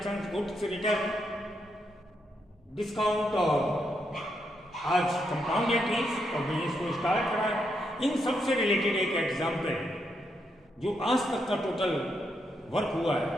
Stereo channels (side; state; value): both; normal; correlation 0.80